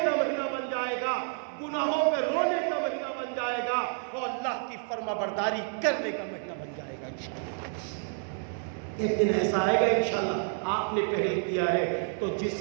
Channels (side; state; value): left; silent; 58 dB below the other